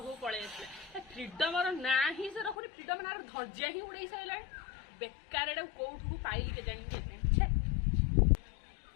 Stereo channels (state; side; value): drops out; right; at 2.6 s